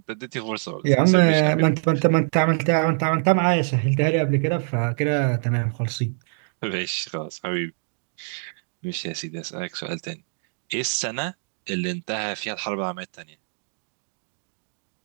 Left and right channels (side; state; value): left; silent; 59 dB below the other